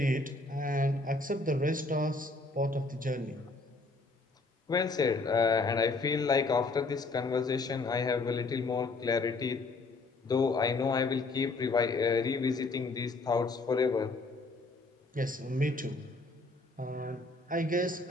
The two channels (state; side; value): quieter; right; 3.4 dB